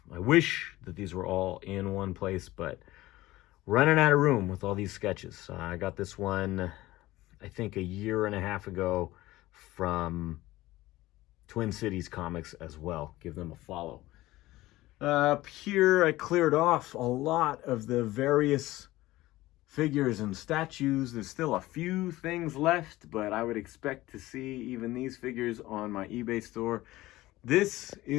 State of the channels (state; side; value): quieter; right; 17.6 dB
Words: I wish that these were all in one place, but running out of room with all these sketches. I got this one, I think, a year and a half ago from Twin Cities Comics as well. Give them a follow. Up here, I cleared off a lot of the various figures and statues. There's still a few things left, but I would expect to see even these figures on my eBay store. This